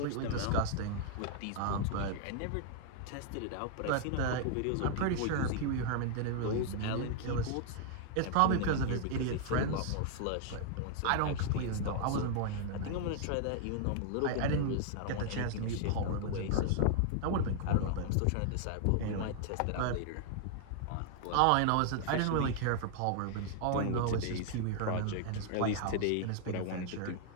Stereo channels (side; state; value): both; different; correlation 0.00